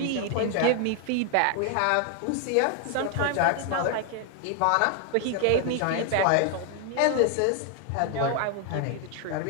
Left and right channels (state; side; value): different; both; correlation 0.00